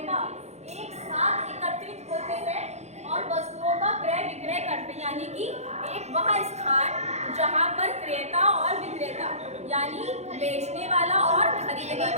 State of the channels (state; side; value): late; left; 0.32 ms